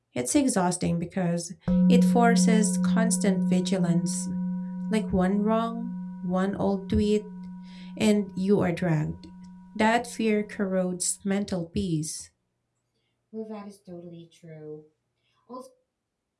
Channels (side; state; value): both; identical; correlation 1.00